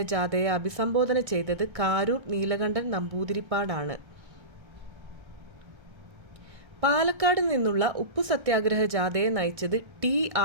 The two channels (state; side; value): late; left; 1.3 ms